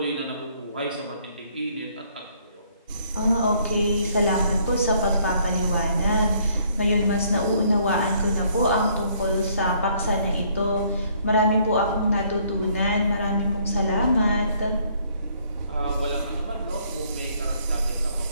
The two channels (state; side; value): inverted; both; correlation -0.64